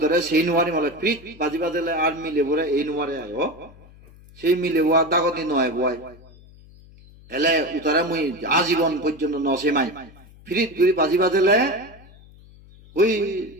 সেই নুয়ারি মলে ফ্রিজ বাজি বাজলে আর মিলে বলে এই নুয়ারে আয় সেই মিলে ওয়া দাগতি নয় বয় এলে উতারে মুই আজীবন পর্যন্ত নসে মাই ফ্রিজ গুলি বাজি বাজলে ওই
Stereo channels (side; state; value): left; noise; hum, 23 dB below the sound